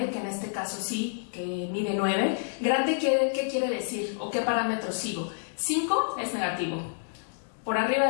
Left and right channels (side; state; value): right; silent; digital silence